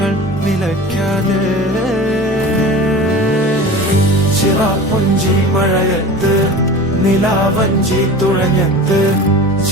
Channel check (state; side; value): normal; both; correlation 0.35